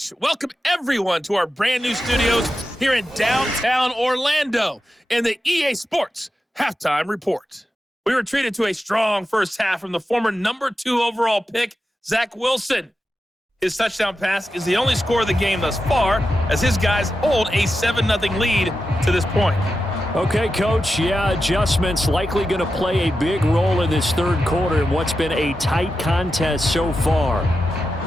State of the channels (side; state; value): both; normal; correlation 0.90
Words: Welcome, everyone, to our brand new studios here in downtown Orlando in the EA Sports halftime report. We were treated to a strong first half from the former number 2 overall pick, Zach Wilson. His touchdown pass is the only score of the game thus far, as his guys hold a 7-0 lead to this point. Okay, Coach, yeah, adjustments likely going to play a big role in this 3rd quarter in what's been a tight contest so far.